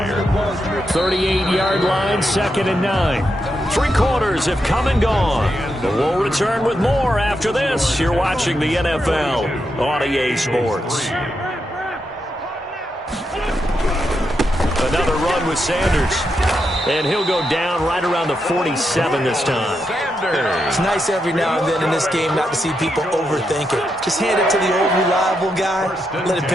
38-yard line, 2nd and 9. 3 quarters have come and gone. But we'll return with more after this. You're watching the NFL on EA Sports. Another run with Sanders. And he'll go down right around the 47 this time. It's nice every now and then in this game not to see people overthink it. Just hand it to the old reliable guy. Let him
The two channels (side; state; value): both; normal; correlation 0.84